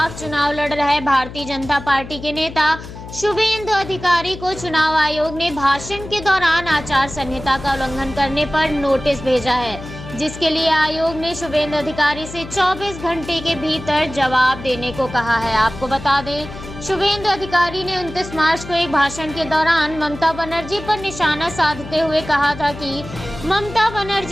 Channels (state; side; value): noise; left; hum, 13 dB below the sound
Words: चुनाव लड़ रहे भारतीय जनता पार्टी के नेता शुभेंदु अधिकारी को चुनाव आयोग ने भाषण के दौरान आचार संहिता का उल्लंघन करने पर नोटिस भेजा है, जिसके लिए आयोग ने शुभेंदु अधिकारी से 24 घंटे के भीतर जवाब देने को कहा है। आपको बता दें, शुभेंदु अधिकारी ने 29 मार्च को एक भाषण के दौरान ममता बनर्जी पर निशाना साधते हुए कहा था कि ममता